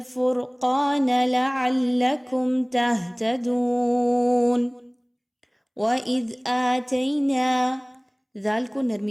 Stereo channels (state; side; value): identical; both; correlation 1.00